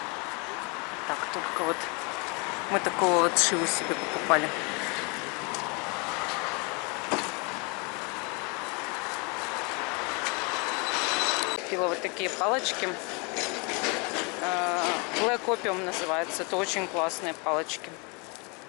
Так, только вот мы такого вот шиву себе покупали. Купила вот такие палочки. Black Opium называется. Это очень классные палочки.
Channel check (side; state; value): right; quieter; 31.7 dB